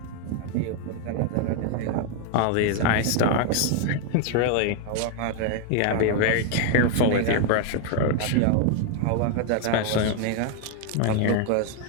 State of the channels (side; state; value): both; different; correlation 0.00